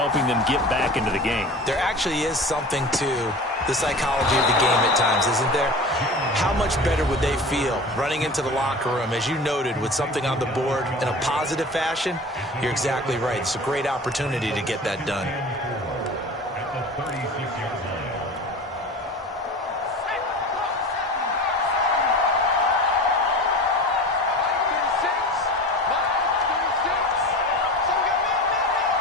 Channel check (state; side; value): normal; both; correlation 0.35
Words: them get back into the game. There actually is something to the psychology of the game at times, isn't there? How much better would they feel running into the locker room, as you noted, with something on the board in a positive fashion? You're exactly right. It's a great opportunity to get that done.